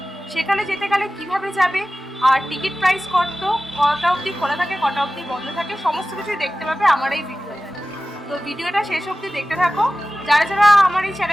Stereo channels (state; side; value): normal; both; correlation 0.96